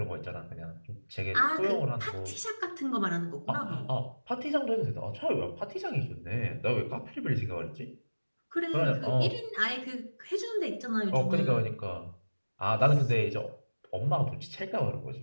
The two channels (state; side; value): inverted; both; correlation -1.00